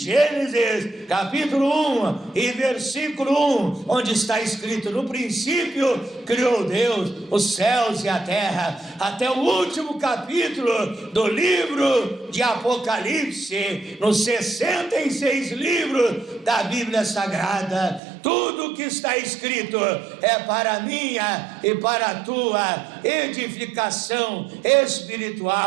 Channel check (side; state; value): left; drops out; at 18.0 s